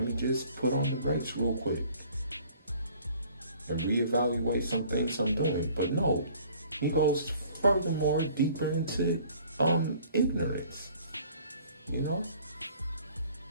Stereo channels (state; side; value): inverted; both; correlation -0.53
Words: just put on the brakes real quick and reevaluate some things I'm doing. But no, he goes furthermore deeper into ignorance, you know?